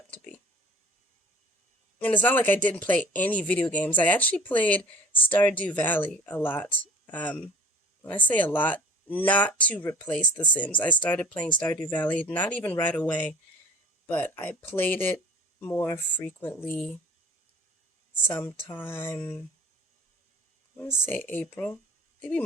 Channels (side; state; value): both; normal; correlation 0.47